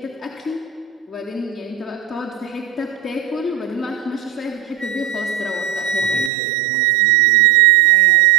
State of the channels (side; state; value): left; drops out; at 6.3 s